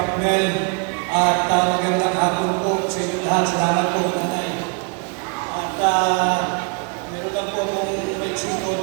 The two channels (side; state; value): left; quieter; 36.7 dB